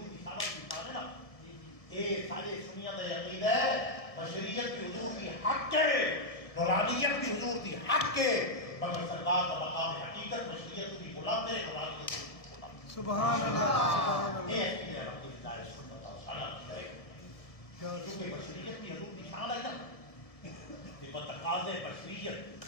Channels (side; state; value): right; late; 1.7 ms